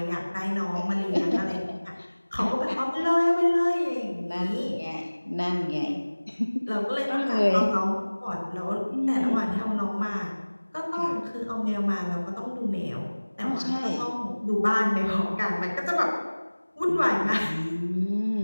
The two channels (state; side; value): inverted; both; correlation -1.00